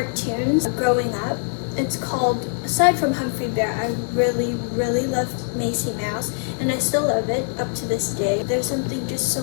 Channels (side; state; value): right; silent; digital silence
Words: growing up. It's called, aside from Humphrey Bear, I really, really loved Macy Mouse, and I still love it up to this day. There's something just so